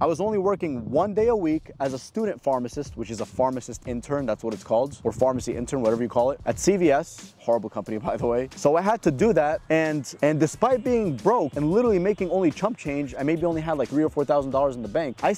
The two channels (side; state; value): both; identical; correlation 1.00